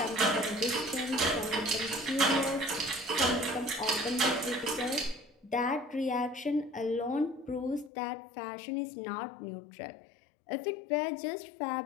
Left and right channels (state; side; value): drops out; right; at 7.9 s